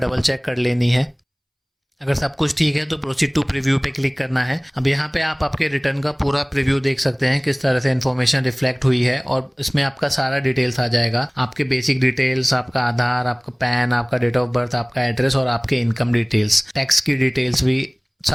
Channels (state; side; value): identical; both; correlation 1.00